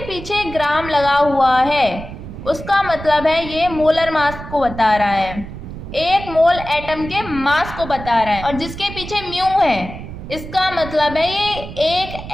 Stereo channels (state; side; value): noise; right; rumble, 11 dB below the sound